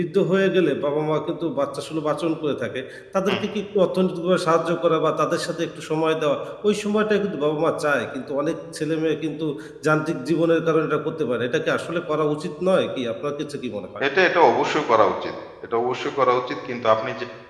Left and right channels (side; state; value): both; identical; correlation 1.00